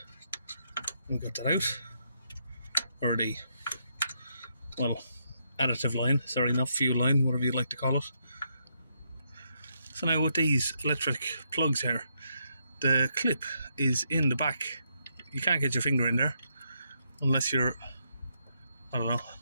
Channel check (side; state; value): both; inverted; correlation -0.78